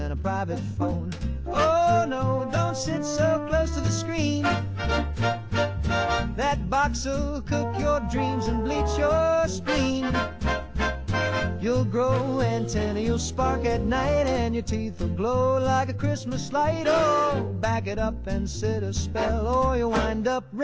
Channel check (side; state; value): both; identical; correlation 1.00